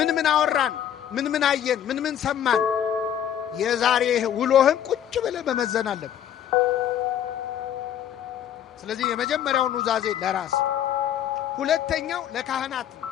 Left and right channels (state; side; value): quieter; right; 10.0 dB